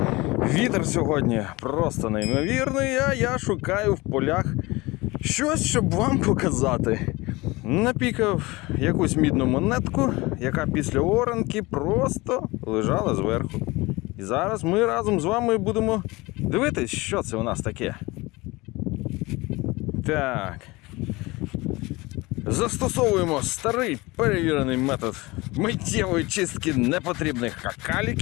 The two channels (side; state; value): right; quieter; 22.3 dB